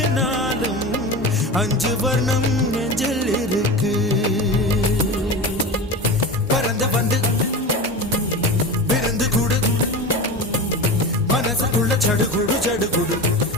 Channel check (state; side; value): normal; both; correlation 0.27